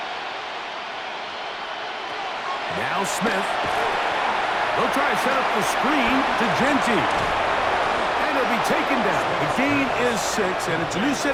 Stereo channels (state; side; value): identical; both; correlation 1.00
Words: Now Smith. They'll try to set up the screen to Genty. And he'll be taken down. The gain is 6, and it's a new set